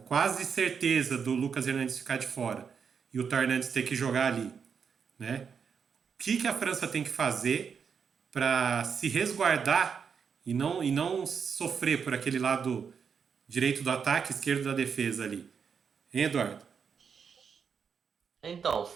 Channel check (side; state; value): left; quieter; 6.5 dB